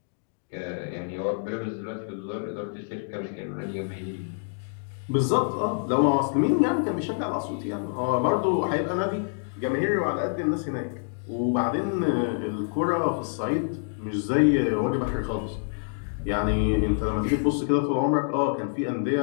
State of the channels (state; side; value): silent; right; digital silence